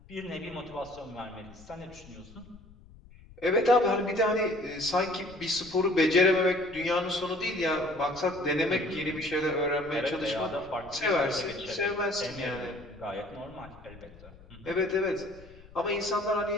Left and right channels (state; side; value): noise; left; rumble, 21 dB below the sound